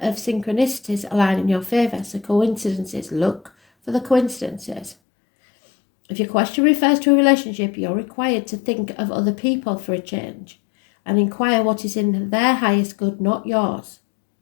of synchronicities align in your favour. So coincidences, look for the coincidences. If your question refers to a relationship, you're required to think of other people for a change and inquire what is in their highest good, not yours.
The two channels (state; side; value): drops out; right; at 5.0 s